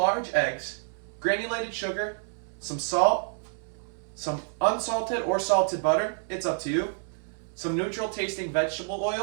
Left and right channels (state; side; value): silent; left; 59 dB below the other